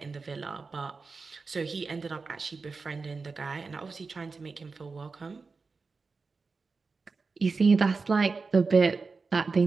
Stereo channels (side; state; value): left; quieter; 4.4 dB